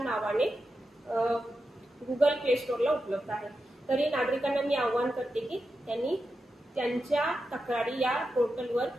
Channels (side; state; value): both; normal; correlation 0.89